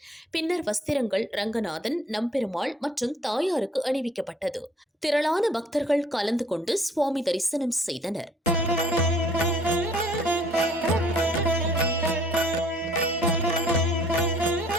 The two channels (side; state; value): both; normal; correlation 0.58